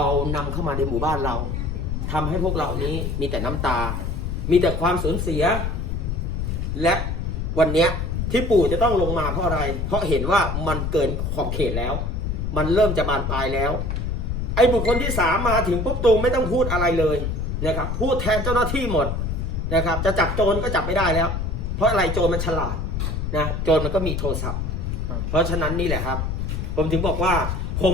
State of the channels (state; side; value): noise; left; rumble, 2 dB below the sound